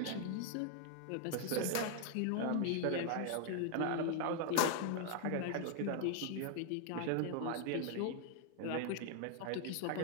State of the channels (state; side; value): different; both; correlation 0.00